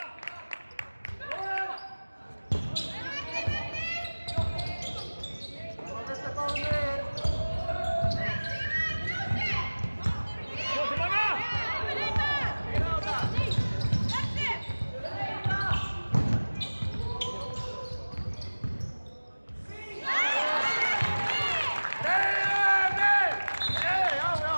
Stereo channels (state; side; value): inverted; both; correlation -1.00